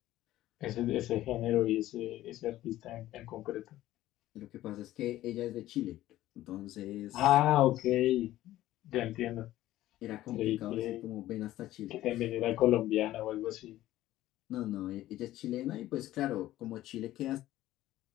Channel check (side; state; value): right; quieter; 14.8 dB